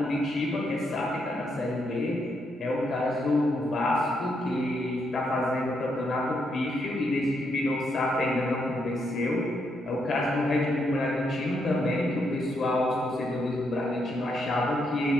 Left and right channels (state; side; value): normal; both; correlation 0.78